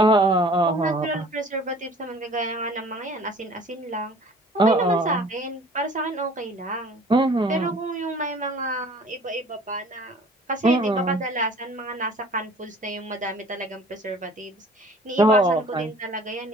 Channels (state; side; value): normal; both; correlation 0.49